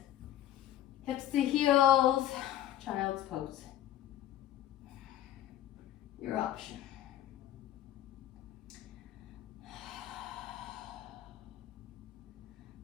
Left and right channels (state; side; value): quieter; right; 12.1 dB